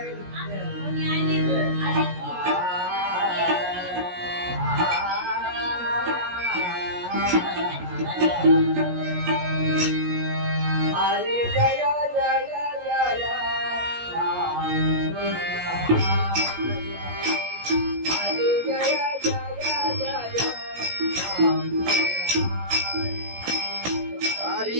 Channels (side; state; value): left; late; 17 ms